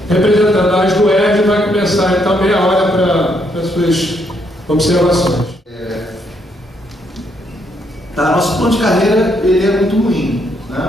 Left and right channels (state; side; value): normal; both; correlation 0.74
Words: representando a AS do ERJ, vai começar então meia hora para as suas observações. Nosso plano de carreira ele é muito ruim,